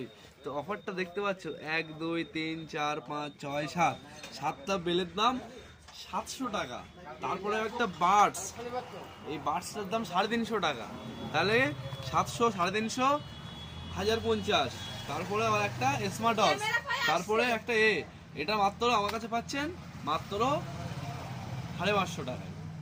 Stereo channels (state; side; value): identical; both; correlation 1.00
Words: তো অফারটা দেখতে পাচ্ছ, 1 2 3 4 5 6 7, 7টা বেলের দাম 700 টাকা। তারপরে একটা বাডস, এই বাডসটার দাম 350 টাকা। তাহলে 700, 350, 1050। তারপরে আবার একটা স্মার্ট ওয়াচ, তারপরে একটা এটা মাত্র আমার কাছে পাচ্ছেন মাত্র 550 টাকায়।